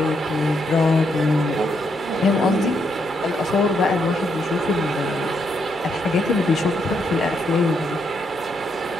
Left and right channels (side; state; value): both; normal; correlation 0.77